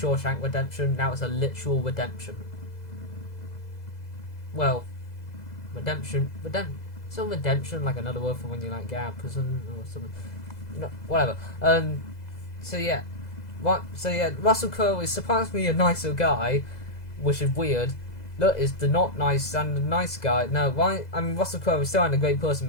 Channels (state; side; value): late; right; 2.0 ms